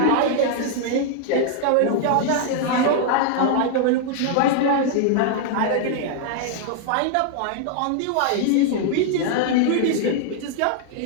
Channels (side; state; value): both; different; correlation -0.01